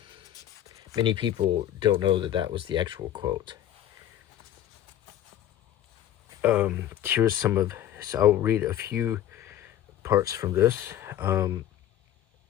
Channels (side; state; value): right; quieter; 11.7 dB